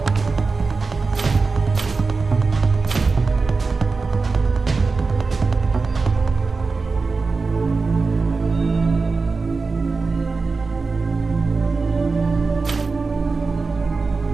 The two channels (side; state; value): left; quieter; 4.2 dB